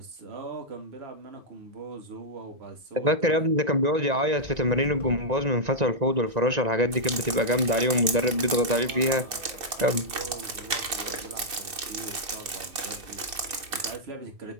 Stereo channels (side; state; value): left; late; 2.6 ms